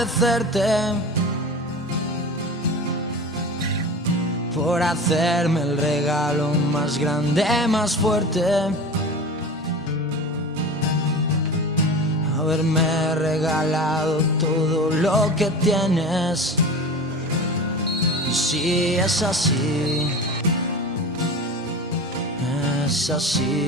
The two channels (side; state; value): both; normal; correlation 0.33